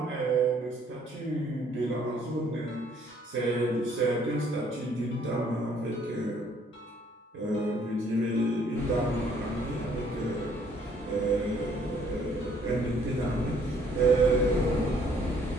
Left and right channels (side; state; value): both; normal; correlation 0.63